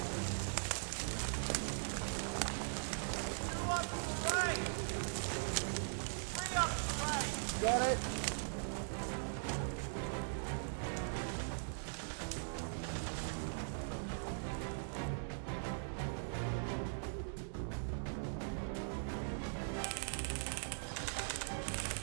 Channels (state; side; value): silent; left; digital silence